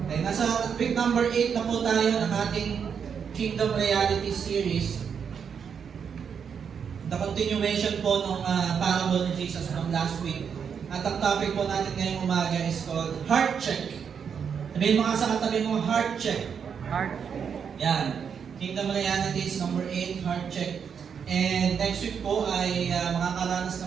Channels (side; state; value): left; quieter; 7.0 dB